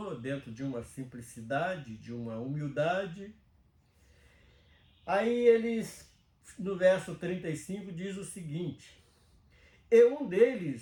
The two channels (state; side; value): identical; both; correlation 1.00